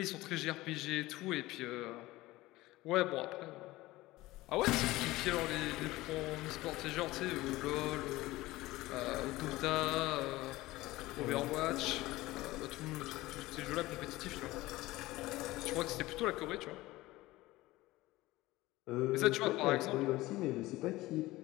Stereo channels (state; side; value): quieter; right; 18.6 dB